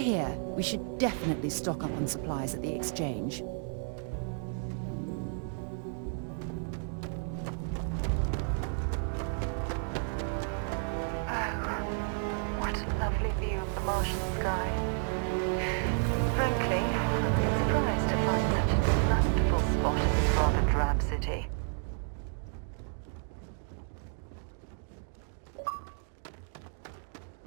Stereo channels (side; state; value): left; silent; 56 dB below the other